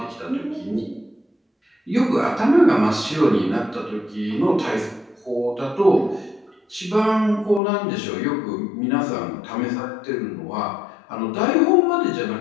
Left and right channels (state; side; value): drops out; right; at 7.6 s